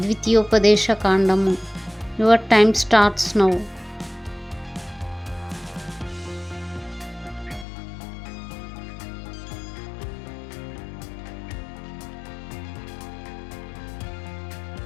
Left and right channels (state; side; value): drops out; right; at 7.7 s